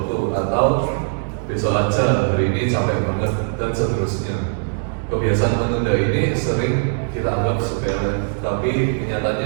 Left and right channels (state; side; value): silent; left; digital silence